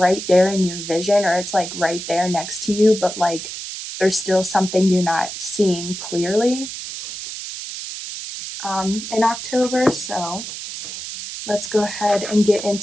there in your vision, or it's like right there next to you, but like there's still something you're not seeing clearly in October. So let's go ahead and get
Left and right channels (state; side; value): noise; right; hiss, 8 dB below the sound